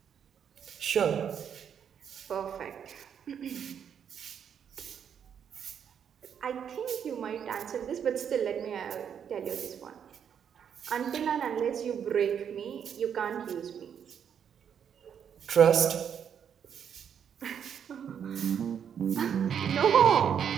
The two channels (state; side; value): quieter; left; 8.1 dB